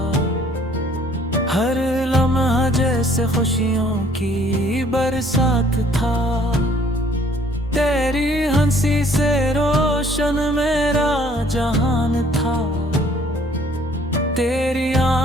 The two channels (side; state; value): both; normal; correlation 0.59